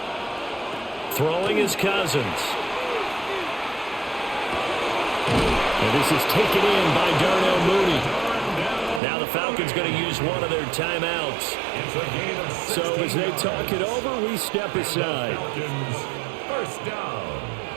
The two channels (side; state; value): left; drops out; at 9.0 s